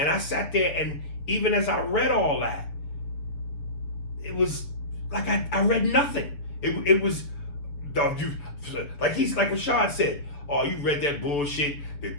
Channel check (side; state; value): right; late; 7.0 ms